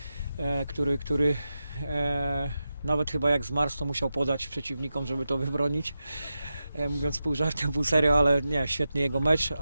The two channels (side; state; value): both; inverted; correlation -0.91